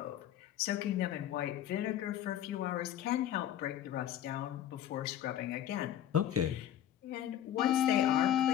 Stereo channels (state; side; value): quieter; right; 11.1 dB